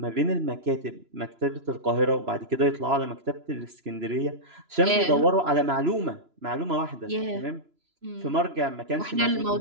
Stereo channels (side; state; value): left; late; 3.0 ms